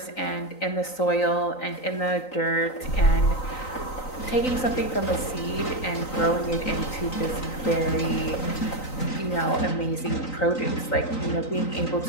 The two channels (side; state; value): right; late; 3.9 ms